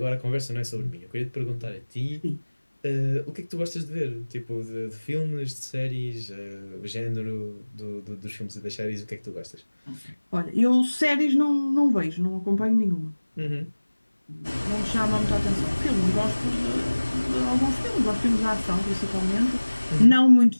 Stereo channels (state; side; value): inverted; both; correlation -1.00